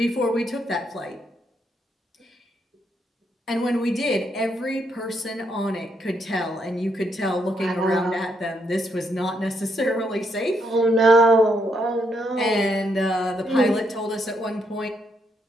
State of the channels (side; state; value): both; normal; correlation 0.77